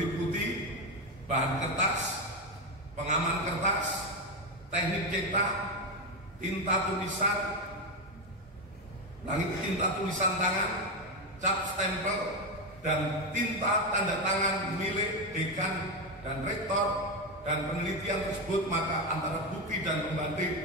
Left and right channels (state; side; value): normal; both; correlation 0.11